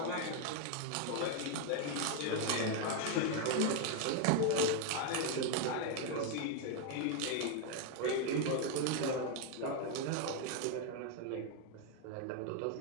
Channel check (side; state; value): both; different; correlation 0.01